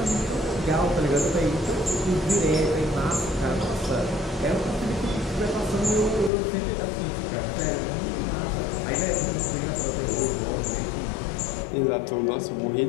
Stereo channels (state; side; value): drops out; right; at 6.3 s